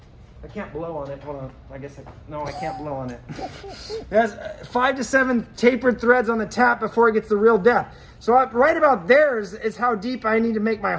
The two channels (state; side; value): identical; both; correlation 1.00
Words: I can't blow on it. Hold on. I can't blow on it. It has 5 to 7 tapered threads on the tap before it gets the real depth. So right about there is how deep I need to make my